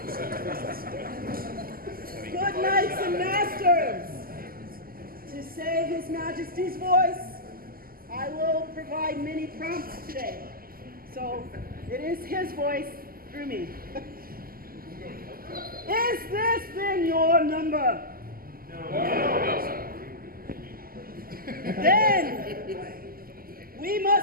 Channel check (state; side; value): late; left; 0.42 ms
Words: Good knights and masters, to save His Majesty's voice, I will provide many prompts today. So it is His voice through me. Is this then your number? No. Then we